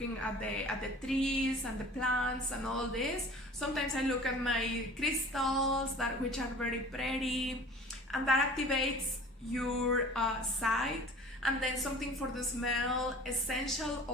at the trees and the plants and all this. Sometimes I look at my crystals that which are very pretty, and that activates your sight. And then something for the smell. Essential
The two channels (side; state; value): both; normal; correlation 0.44